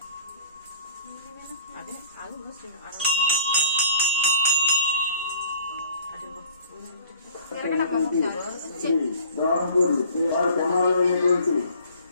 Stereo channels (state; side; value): inverted; both; correlation -0.48